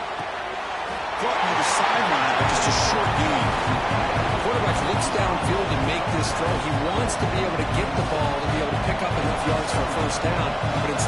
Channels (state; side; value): identical; both; correlation 1.00